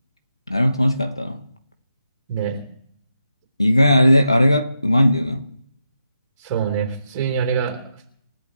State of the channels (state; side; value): inverted; both; correlation -0.85